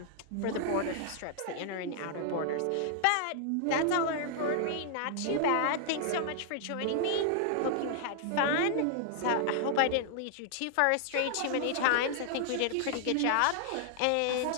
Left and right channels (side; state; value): both; different; correlation -0.01